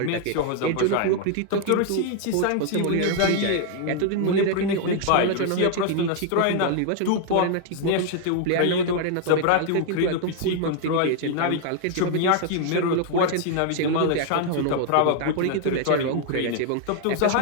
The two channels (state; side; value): different; both; correlation 0.00